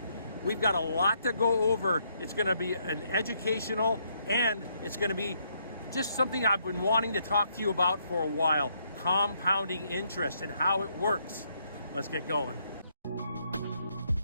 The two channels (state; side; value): inverted; both; correlation -0.73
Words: We've got a lot to go over. It's gonna be an educational, and it's gonna be just something I've been wanting to talk to you about for a while. Compounding interest and how it works. Let's get going.